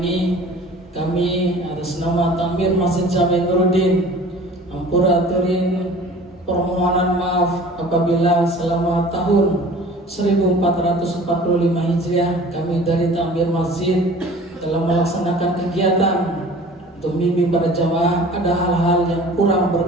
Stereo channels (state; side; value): normal; both; correlation 0.45